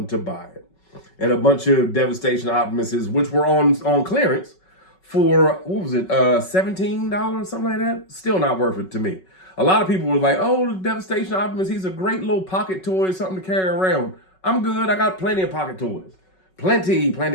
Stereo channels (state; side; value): late; right; 5.4 ms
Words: to buy it. And a bunch of Devastation Optimuses, which were on clearance for, what was it, $17, something like that? Still not worth it to me. A lot of people were like, oh, the Devastation Optimus, he's a great little pocket toy, something to carry around. I'm good. I got plenty of pocket toys. Plenty.